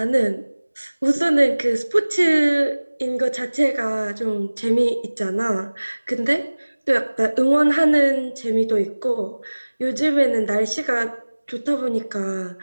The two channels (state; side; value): inverted; both; correlation -1.00